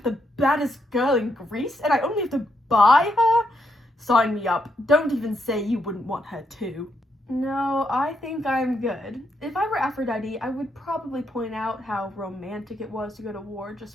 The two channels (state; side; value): normal; both; correlation 0.78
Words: the baddest girl in Greece and I only have to buy her? Sign me up. Don't even say you wouldn't want her too. No, I think I'm good. If I were Aphrodite, I would probably point out how romantic it was to go to war